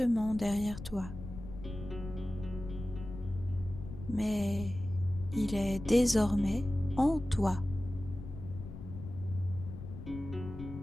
derrière toi. Mais il est désormais en toi.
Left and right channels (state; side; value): noise; left; rumble, 11 dB below the sound